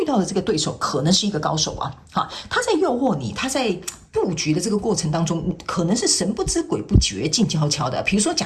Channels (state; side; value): identical; both; correlation 1.00